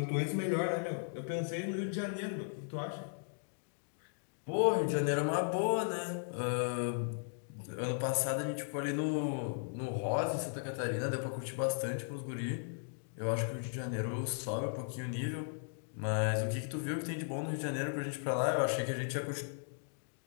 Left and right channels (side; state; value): right; silent; digital silence